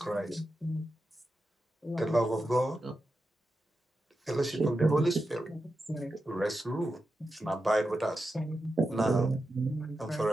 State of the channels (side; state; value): both; normal; correlation 0.89